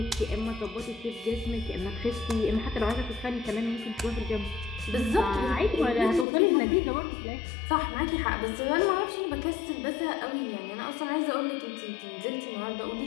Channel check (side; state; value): right; drops out; at 6.2 s